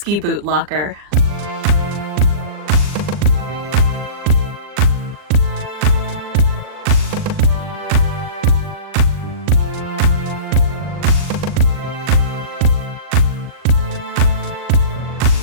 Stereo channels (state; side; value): late; left; 39 ms